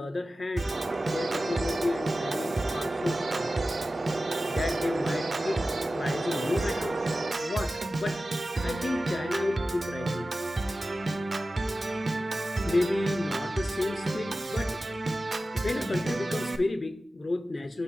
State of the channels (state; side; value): normal; both; correlation 0.95